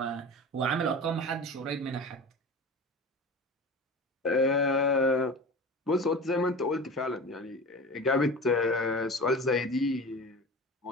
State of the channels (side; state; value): both; normal; correlation 0.33